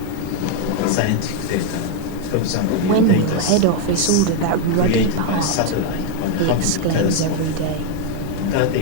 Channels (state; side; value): different; both; correlation 0.01